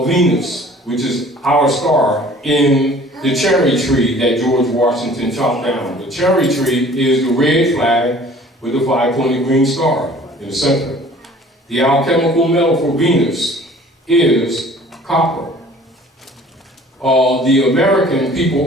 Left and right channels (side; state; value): both; normal; correlation 0.50